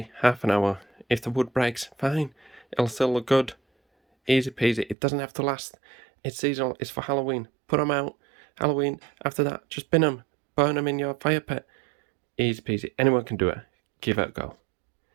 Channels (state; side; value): drops out; left; at 5.0 s